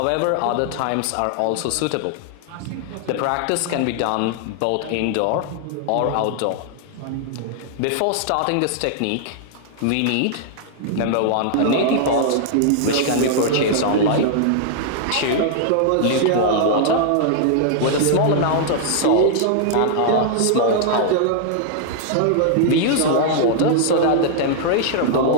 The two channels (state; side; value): different; both; correlation -0.01